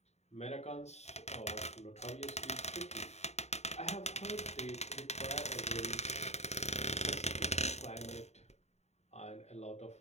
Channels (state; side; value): late; right; 0.32 ms